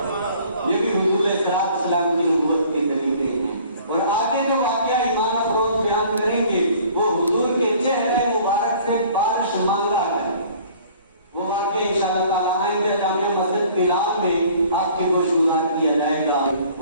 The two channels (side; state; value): both; inverted; correlation -0.52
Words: یہ بھی حضور علیہ السلام کی نبوت کے طریقے ہیں، اور آگے جو واقعہ ایمان افروز بیان کریں گے وہ حضور کے چہرے مبارک سے بارش مانگا ہے، وہ واقعہ انشاءاللہ تعالیٰ آئندہ جامع مسجد بلال میں آپ کے گوش گزار کیا جائے گا۔